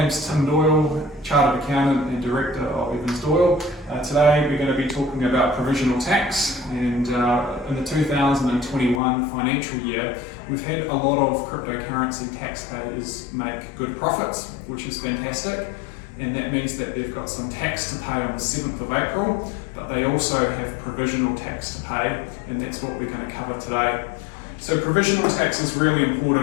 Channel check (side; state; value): right; drops out; at 9.0 s